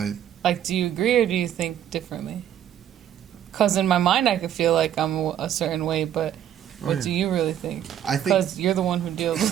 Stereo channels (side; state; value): left; quieter; 10.4 dB